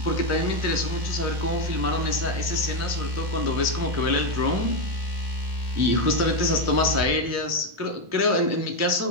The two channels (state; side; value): late; left; 1.4 ms